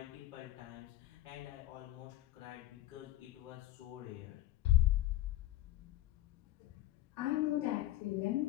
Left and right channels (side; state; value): right; quieter; 14.7 dB